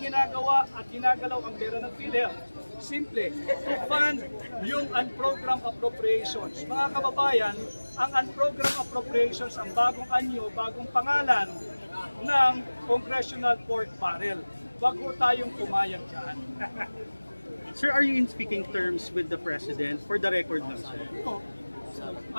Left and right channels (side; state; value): both; inverted; correlation -1.00